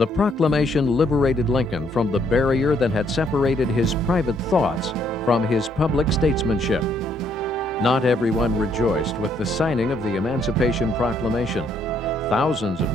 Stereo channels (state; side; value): normal; both; correlation 0.69